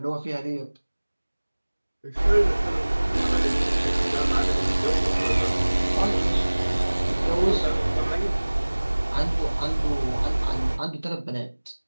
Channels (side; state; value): both; inverted; correlation -1.00